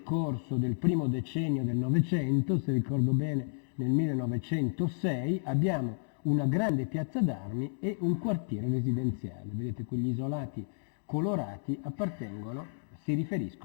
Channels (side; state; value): right; silent; digital silence